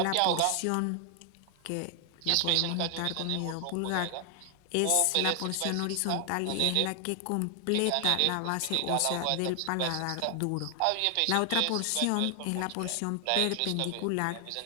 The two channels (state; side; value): different; both; correlation 0.00